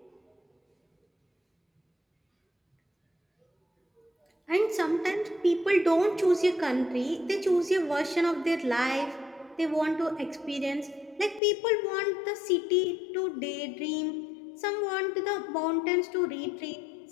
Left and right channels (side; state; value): right; drops out; at 11.4 s